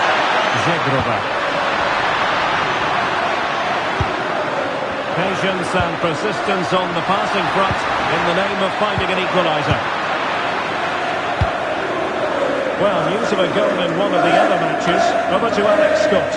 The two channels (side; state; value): both; identical; correlation 1.00